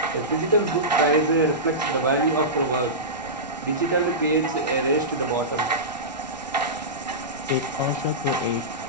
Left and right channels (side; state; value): right; noise; rumble, 22 dB below the sound